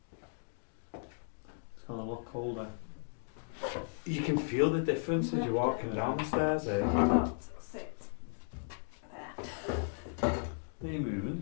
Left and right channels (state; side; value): silent; right; digital silence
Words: It's gone a lot colder. You can feel the difference as you're walking down the stairs here. Not sit there. Are you